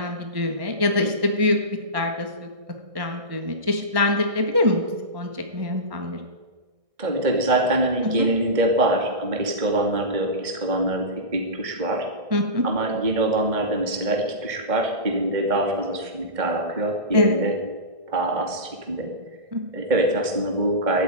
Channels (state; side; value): late; left; 1.6 ms